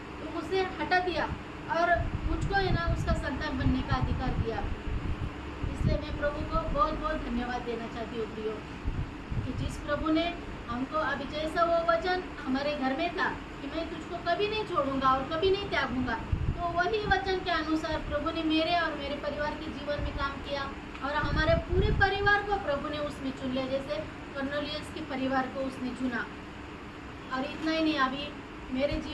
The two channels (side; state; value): both; identical; correlation 1.00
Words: तो मुझसे हटा दिया, और मुझको है ना उसका संतान बनने का अधिकार दिया। इसलिए मैं प्रभु को बहुत बहुत धन्यवाद देना चाहती हूँ प्रियो, कि जिस प्रभु ने हमको अभी जैसा वो वचन हमारे घर में था कि मैं तुझको कभी नहीं छोड़ूंगा और कभी नहीं त्यागूंगा, तो वही वचन के अनुसार प्रभु ने मेरे और मेरे परिवार के जीवन में काम किया, और हमारे पूरे परिवार को प्रभु ने उसमें चुन लिया, जैसे कर्नेलियस के परिवार को उसने चुना। और इतना ही नहीं, अभी मेरे